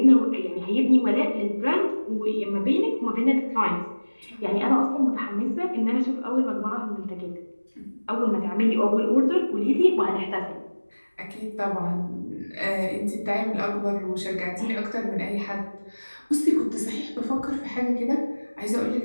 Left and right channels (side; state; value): both; inverted; correlation -1.00